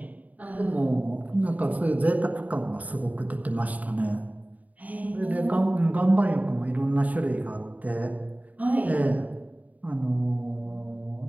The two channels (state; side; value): late; left; 0.074 ms